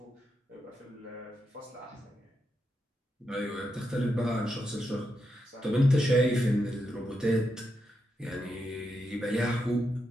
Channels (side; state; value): both; normal; correlation 0.85